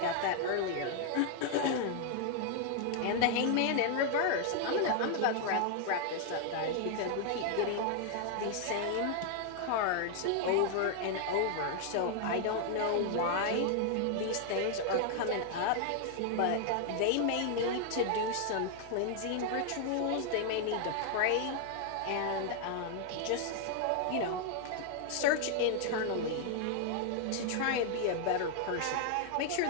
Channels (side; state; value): both; different; correlation 0.00